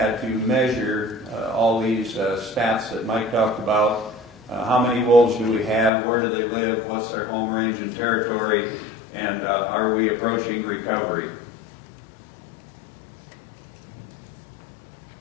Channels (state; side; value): drops out; right; at 5.9 s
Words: to measure all these stats that Mike talked about. How many wolves do we have? Where do they live? What's their home range and territory? And are we approaching recovery?